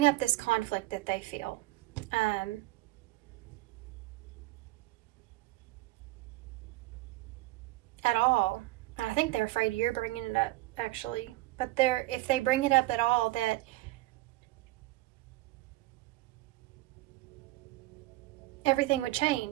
up this conflict that they feel, at all, and I think they're afraid you're bringing it up, actually, but if they bring it up at all, that everything would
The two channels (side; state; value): left; quieter; 18.6 dB